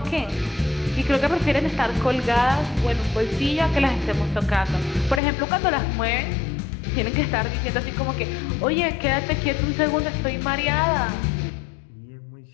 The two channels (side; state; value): right; drops out; at 5.2 s